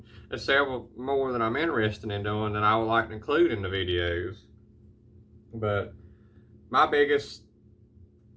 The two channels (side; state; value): both; identical; correlation 1.00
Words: there's several more that I'm interested in doing that I would like to include in the videos. But my biggest